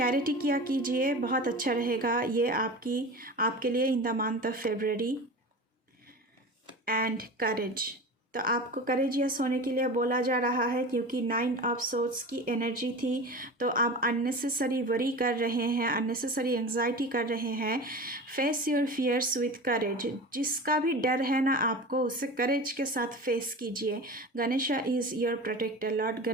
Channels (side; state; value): both; normal; correlation 0.32